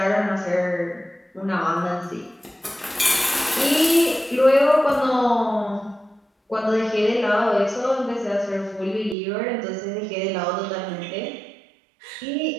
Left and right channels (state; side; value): drops out; left; at 9.2 s